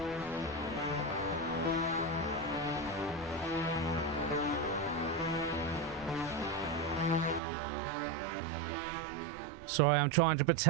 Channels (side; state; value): left; drops out; at 7.4 s